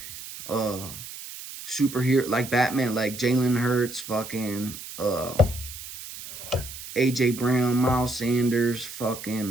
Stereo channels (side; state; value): right; noise; hiss, 12 dB below the sound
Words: superhero, like Batman, like Jalen Hurts, fucking AJ Brown, Miles Sanders,